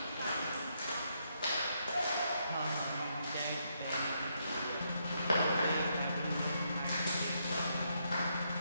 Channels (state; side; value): inverted; both; correlation -0.77